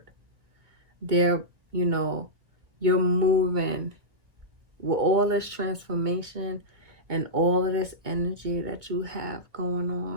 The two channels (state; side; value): late; left; 2.0 ms